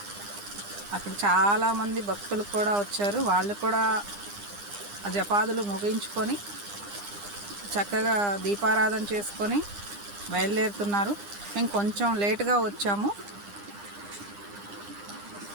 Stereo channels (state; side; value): late; left; 9.9 ms